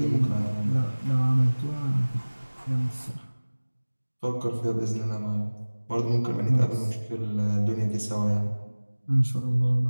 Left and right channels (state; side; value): inverted; both; correlation -1.00